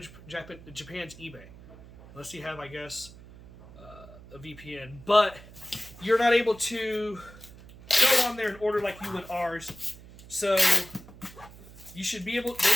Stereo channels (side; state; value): right; noise; hum, 19 dB below the sound